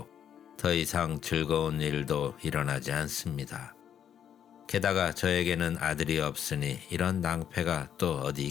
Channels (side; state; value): right; quieter; 9.2 dB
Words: 더 이상 즐거운 일도 일어나지 않습니다. 게다가 저에게는 아들이 없으니 이런 낭패가 또 어디